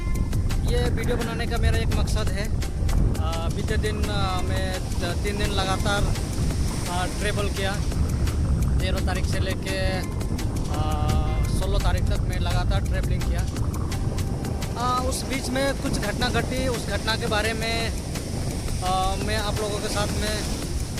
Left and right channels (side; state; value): both; identical; correlation 1.00